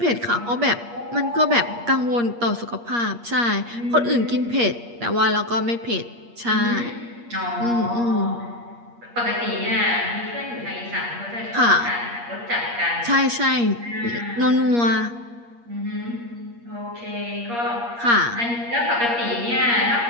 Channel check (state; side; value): late; left; 8.5 ms